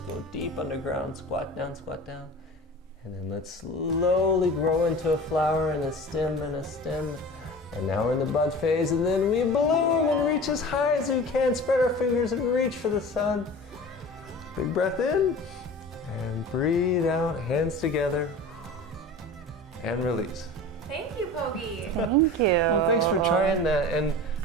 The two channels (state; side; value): normal; both; correlation 0.37